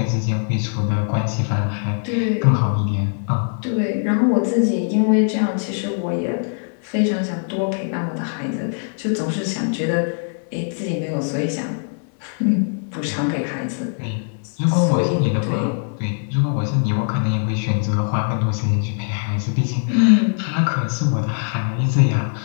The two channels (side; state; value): right; silent; 65 dB below the other